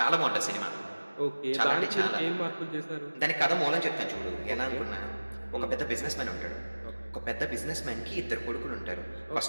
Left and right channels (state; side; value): inverted; both; correlation -1.00